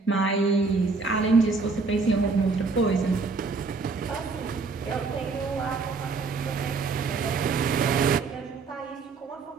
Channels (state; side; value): quieter; left; 4.3 dB